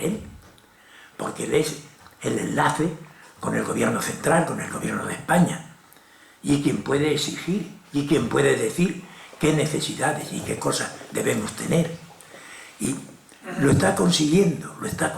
él, porque él es el enlace con el gobierno central, con el gobierno de España, y quien puede exigir, y quien puede decir qué necesidades y qué cosas debemos tener. Y lo está consiguiendo, lo está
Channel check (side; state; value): both; identical; correlation 1.00